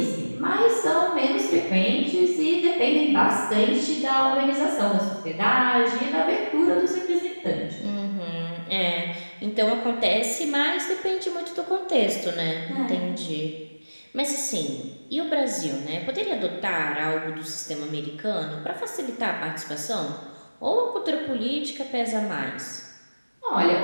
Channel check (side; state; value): both; inverted; correlation -1.00